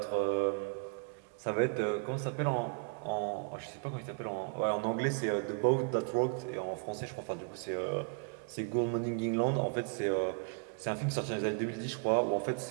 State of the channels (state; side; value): quieter; left; 37.0 dB